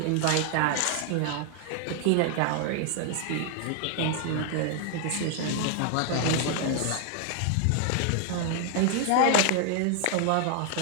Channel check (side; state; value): both; different; correlation 0.00